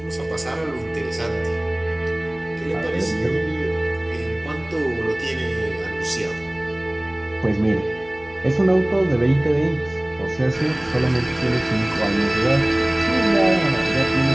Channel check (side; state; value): left; noise; hum, 24 dB below the sound